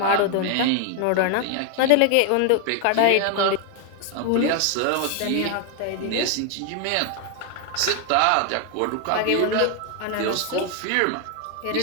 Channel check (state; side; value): different; both; correlation 0.01